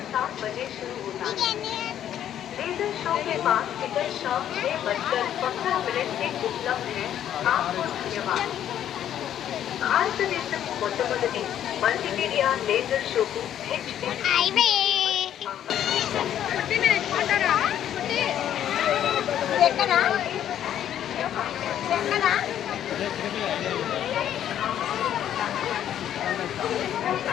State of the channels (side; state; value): right; quieter; 10.6 dB